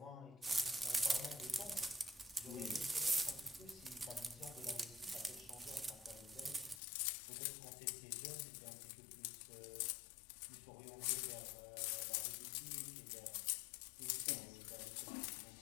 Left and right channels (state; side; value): drops out; right; at 6.8 s